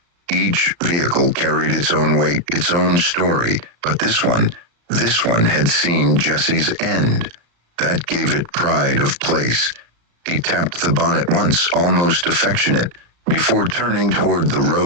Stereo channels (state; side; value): late; left; 35 ms